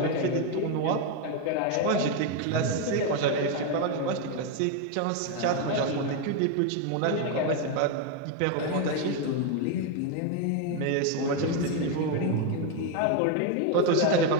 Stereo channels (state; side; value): different; both; correlation 0.02